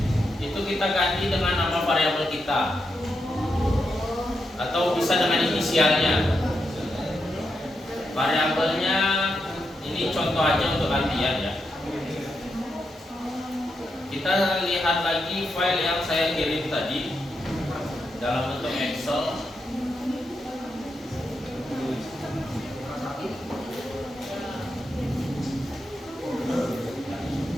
itu kita ganti dengan nama variabel kita atau bisa dengan inisialnya. Variabelnya ini contoh aja untuk latihan ya. Kita lihat lagi file yang saya kirim tadi dalam bentuk Excel.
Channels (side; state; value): both; normal; correlation 0.84